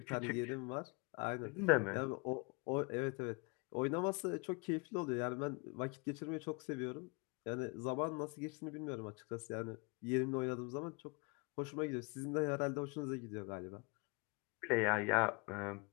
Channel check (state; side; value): quieter; right; 30.5 dB